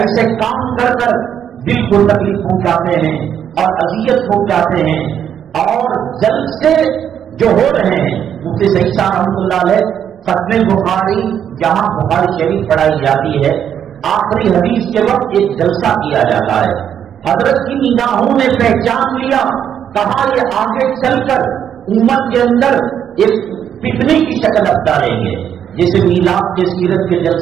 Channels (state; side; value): quieter; left; 9.0 dB